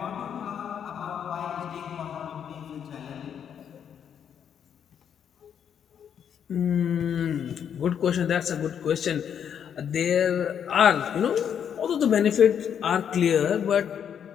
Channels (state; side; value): quieter; right; 8.4 dB